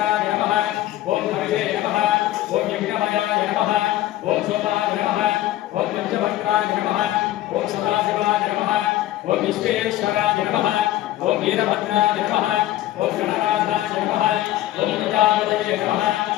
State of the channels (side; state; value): right; quieter; 14.6 dB